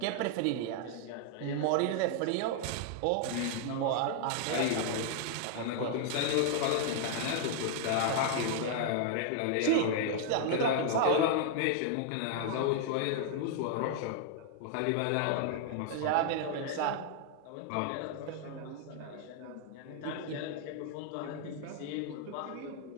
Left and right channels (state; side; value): different; both; correlation 0.00